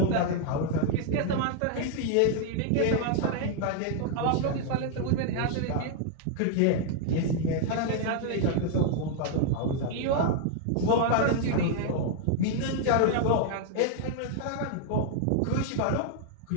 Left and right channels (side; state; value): both; different; correlation 0.00